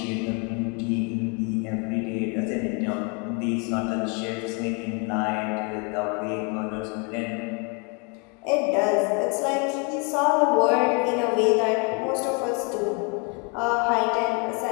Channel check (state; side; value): quieter; right; 34.1 dB